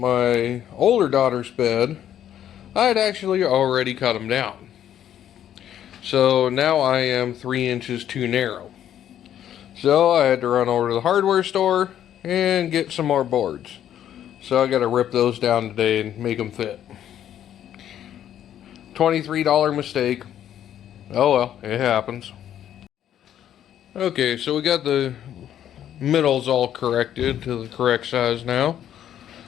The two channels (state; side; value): quieter; right; 10.6 dB